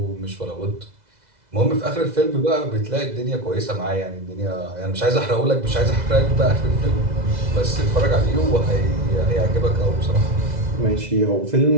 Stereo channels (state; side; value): late; left; 2.0 ms